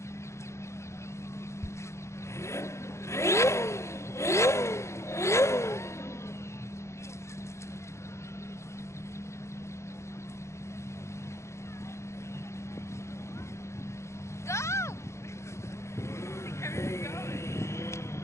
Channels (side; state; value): right; late; 0.14 ms